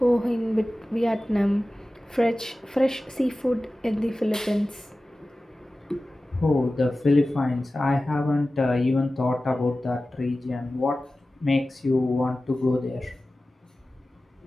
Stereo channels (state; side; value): normal; both; correlation 0.96